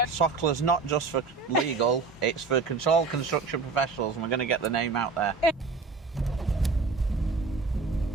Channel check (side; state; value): left; quieter; 4.4 dB